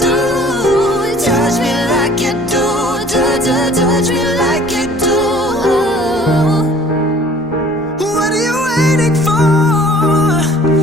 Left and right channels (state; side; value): normal; both; correlation 0.51